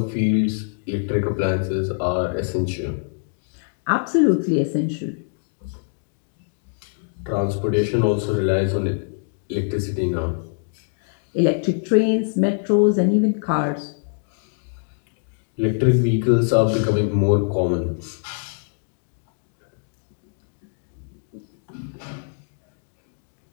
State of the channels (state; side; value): silent; right; digital silence